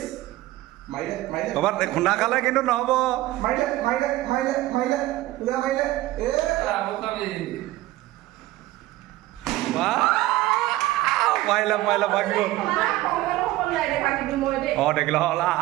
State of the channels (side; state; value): left; quieter; 16.7 dB